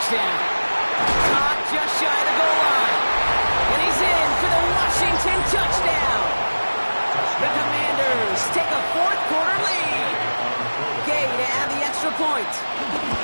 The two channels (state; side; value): inverted; both; correlation -1.00